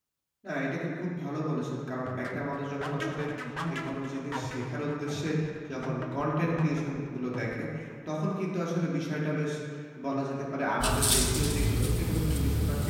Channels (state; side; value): identical; both; correlation 1.00